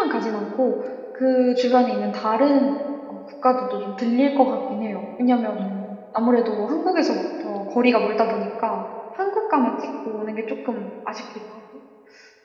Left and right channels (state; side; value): identical; both; correlation 1.00